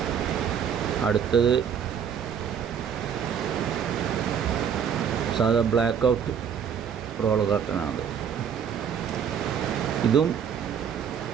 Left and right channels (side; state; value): left; quieter; 7.8 dB